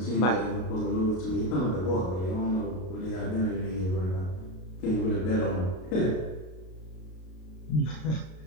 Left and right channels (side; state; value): right; late; 33 ms